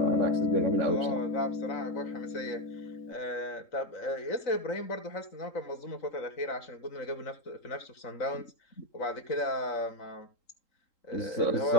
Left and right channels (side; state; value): right; late; 3.8 ms